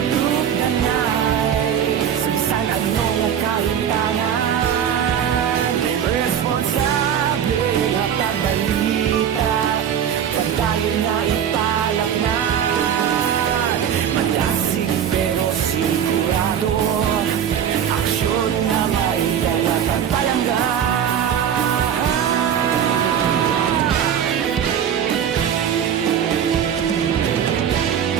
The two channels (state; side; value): quieter; left; 8.7 dB